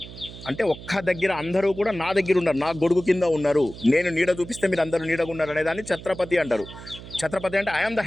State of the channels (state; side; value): noise; right; hum, 15 dB below the sound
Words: అంటే ఒక్క దగ్గర అందరూ కూడా నా దగ్గర ఉన్నారు, నా గొడుగు కింద ఉన్నారు, నేను నీడ చూపిస్తే మీరు అందరూ నీడగా ఉన్నారు అనేదాన్ని ఛత్రపతి అంటారు. ఛత్రపతి అంటే ఐఎమ్ ద